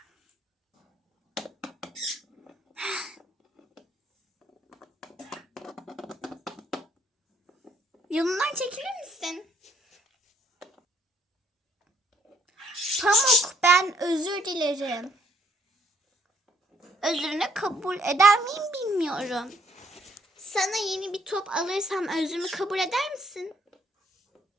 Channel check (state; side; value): normal; both; correlation 0.66